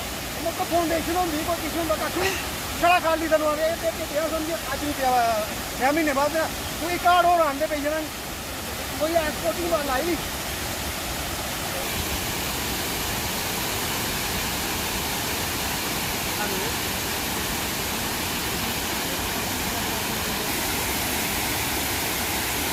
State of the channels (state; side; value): identical; both; correlation 1.00